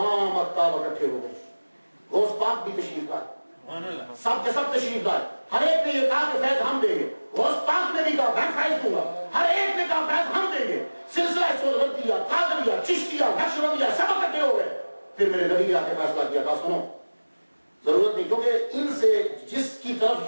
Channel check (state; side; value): inverted; both; correlation -1.00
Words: اقطاب اکٹھے ہو گئے. غوث پاک بھی تشریف لائے، سب کے سب تشریف لائے. ہر ایک نے یہ کہا کہ فیض ہم دیں گے. غوث پاک نے بھی کہا میں فیض دوں گا. ہر ایک نے کہا فیض ہم دیں گے. سلسلہ سہروردیہ، قادریہ، چشتیہ، نقشبندیہ سب اکٹھے ہو گئے. پھر میرے نبی نے آ کے فیصلہ کیا تھا، سنو ضرورت نہیں، کیونکہ ان سے جس کی